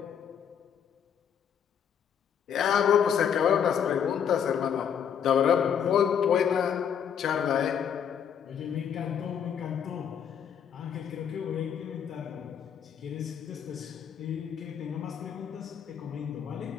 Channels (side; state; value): right; quieter; 8.1 dB